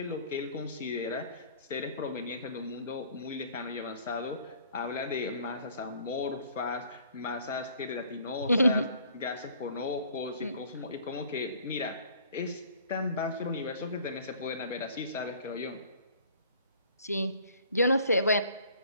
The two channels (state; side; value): inverted; both; correlation -0.54